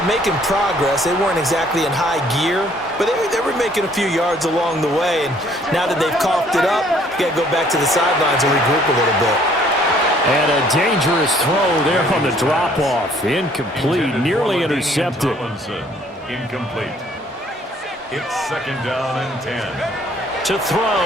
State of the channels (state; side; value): normal; both; correlation 0.61